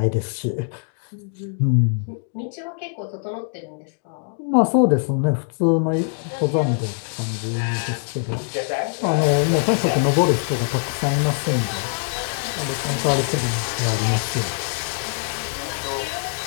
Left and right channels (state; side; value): silent; right; digital silence